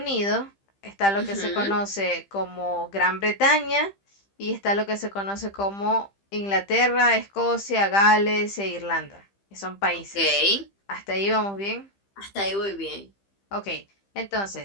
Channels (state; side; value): late; right; 15 ms